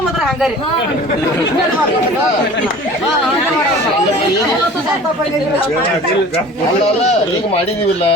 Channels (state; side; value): normal; both; correlation 0.43